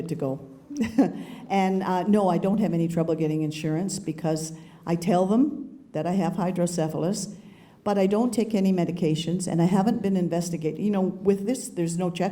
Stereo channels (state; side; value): identical; both; correlation 1.00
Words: to go. And no, I don't have any trouble getting insurance because I tell them that I have hydrocephalus, but I don't take any medications, and I haven't been investigated. You know, with this, there's no